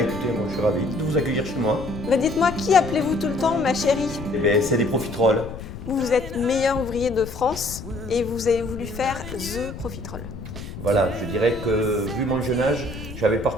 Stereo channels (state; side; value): noise; left; rumble, 11 dB below the sound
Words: moi je suis ravi de vous accueillir chez moi. Dites-moi, qui appelez-vous tout le temps ma chérie? C'est des profiteroles. Vous êtes meilleur ouvrier de France et vous avez voulu faire The Profiterole. Voilà, je dirais que vu mon jeune âge, j'avais